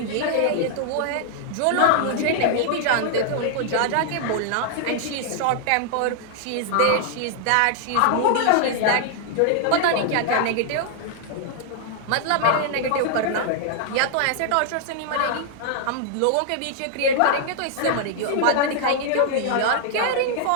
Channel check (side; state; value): both; different; correlation 0.00